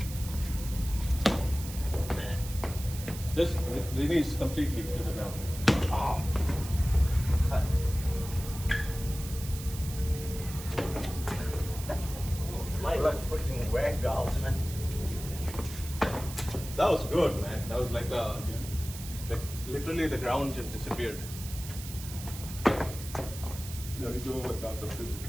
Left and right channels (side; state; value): right; noise; hiss, 12 dB below the sound